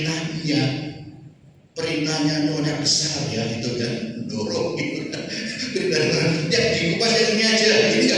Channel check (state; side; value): identical; both; correlation 1.00